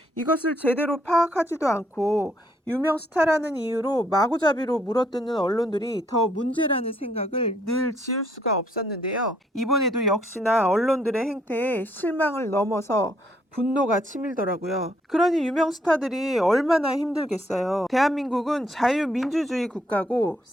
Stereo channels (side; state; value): both; normal; correlation 0.69